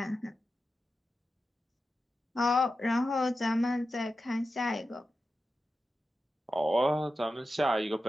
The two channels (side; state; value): both; normal; correlation 0.92